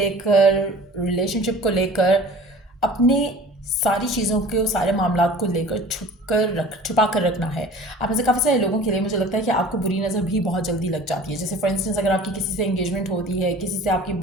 रिलेशनशिप को लेकर, अपने सारी चीज़ों के सारे मामला को लेकर छुपा कर रखना है। आप में से काफ़ी सारे लोगों के लिए मुझे लगता है कि आपको बुरी नज़र भी बहुत जल्दी लग जाती है। जैसे फॉर इंस्टेंस अगर आपकी किसी से एंगेजमेंट होती है, किसी से आपकी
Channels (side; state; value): both; normal; correlation 0.44